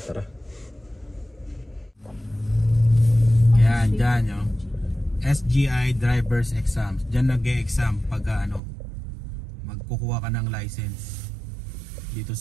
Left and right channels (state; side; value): drops out; left; at 8.6 s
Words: tara. Yan, dyan yung SGI driver's exams. Dyan nag-e-exam pag magkukuha ka ng license dito